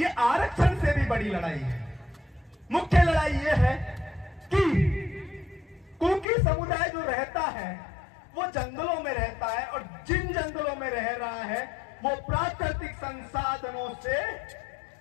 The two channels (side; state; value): right; drops out; at 6.2 s